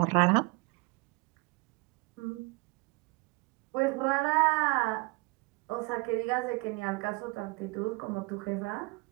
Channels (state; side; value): quieter; left; 26.6 dB